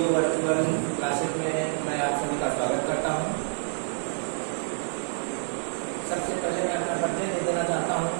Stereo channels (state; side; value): silent; left; 60 dB below the other